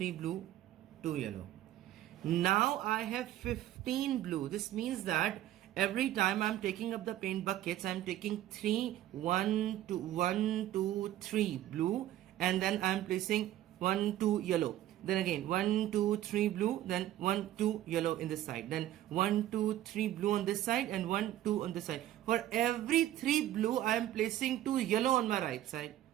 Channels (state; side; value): quieter; left; 13.3 dB